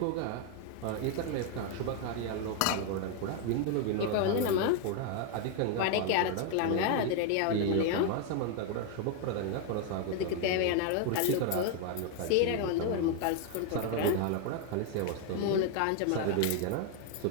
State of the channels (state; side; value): different; both; correlation 0.01